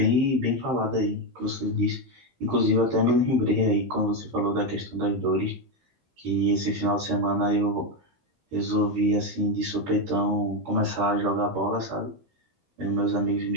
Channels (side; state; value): left; late; 15 ms